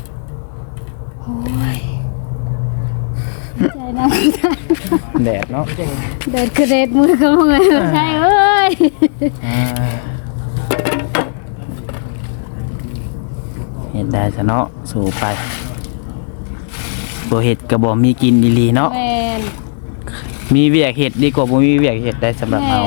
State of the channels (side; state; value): right; silent; digital silence